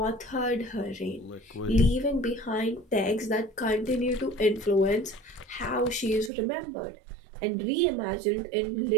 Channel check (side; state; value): left; drops out; at 6.3 s